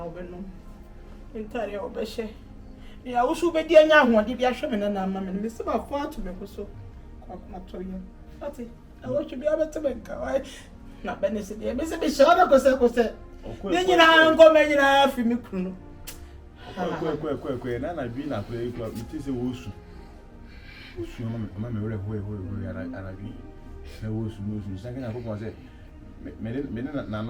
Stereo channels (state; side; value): identical; both; correlation 1.00